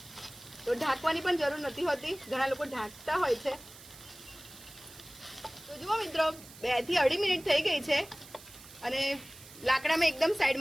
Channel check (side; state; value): right; noise; hiss, 19 dB below the sound